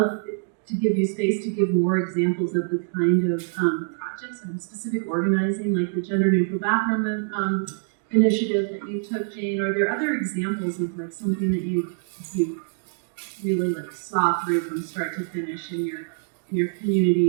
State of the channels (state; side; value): silent; left; digital silence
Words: to give you space to give more examples of the kind of projects and specific organizing, like the gender neutral bathroom initiative that you took, Jane. Are there other examples of like something that you really like saw through from start to finish in your